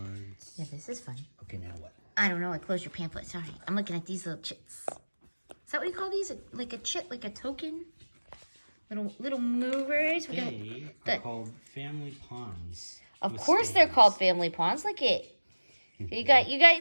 Yeah, this is fun. Okay, now what? I don't know. I closed your pamphlet. Sorry. I'm looking at these little chits. Is that what you call these? Like a chit, like a token? Little movers. They are called family pawns. Of course they're called family pawns. Look it. They got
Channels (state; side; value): inverted; both; correlation -1.00